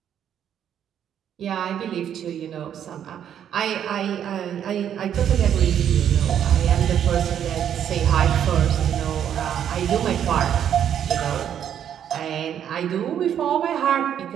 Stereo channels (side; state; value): left; quieter; 9.5 dB